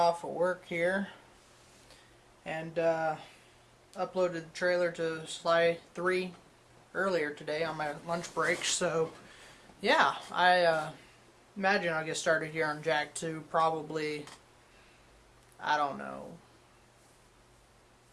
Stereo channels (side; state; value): both; identical; correlation 1.00